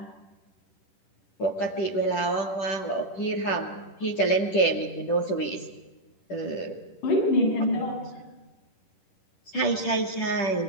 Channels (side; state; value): right; late; 10 ms